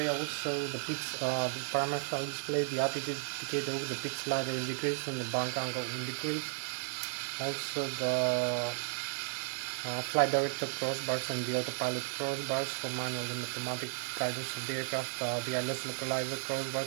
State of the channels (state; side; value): silent; left; 55 dB below the other